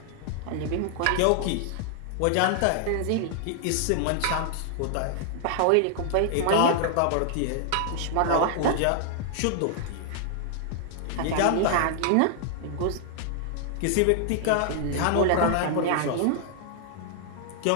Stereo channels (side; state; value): both; different; correlation 0.00